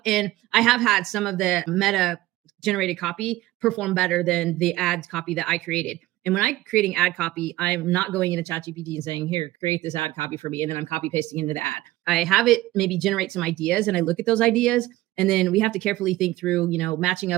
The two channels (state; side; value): quieter; left; 17.2 dB